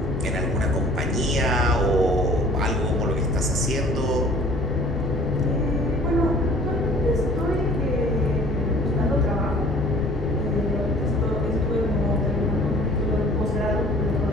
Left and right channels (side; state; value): both; normal; correlation 0.50